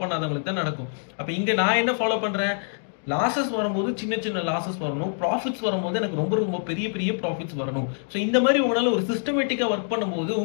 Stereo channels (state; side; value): silent; right; digital silence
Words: பண்ணாதவங்களுக்கு தான் நடக்கும். அப்ப இங்க நான் என்ன ஃபாலோ பண்றேன், லாசஸ் வரும்போது சின்ன லாசஸ் வரணும், ப்ராஃபிட்ஸ் வரும்போது எனக்கு ரொம்ப பெரிய ப்ராஃபிட்ஸ் வரணும். ஸோ இந்த மாதிரி உங்களால ஒரு சிஸ்டமேட்டிக்கா ஒர்க் பண்ணும்போது